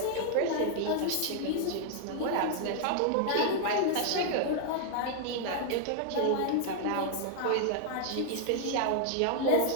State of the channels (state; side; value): different; both; correlation -0.01